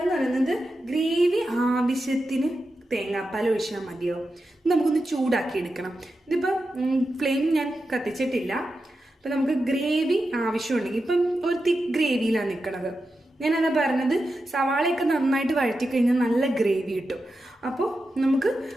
എന്ന് പറയുന്നത് ഗ്രേവി ആവശ്യത്തിന് തേങ്ങാപ്പാൽ ഒഴിച്ചാൽ മതിയോ. നമുക്കൊന്ന് ചൂടാക്കി എടുക്കണം. ഇതിപ്പം ഫ്ലെയിം ഞാൻ കത്തിച്ചിട്ടില്ല. അപ്പം നമുക്ക് ഗ്രേവി ആവശ്യമുണ്ടെങ്കിൽ, ഇപ്പം ഒരു തിക്ക് ഗ്രേവിയിലാണ് നിൽക്കണത്. ഞാനതാ പറഞ്ഞത്, സവാളയൊക്കെ നന്നായിട്ട് വഴറ്റി കഴിഞ്ഞാൽ നല്ല ഗ്രേവി കിട്ടും. അപ്പോൾ നമുക്ക്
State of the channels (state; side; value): normal; both; correlation 0.90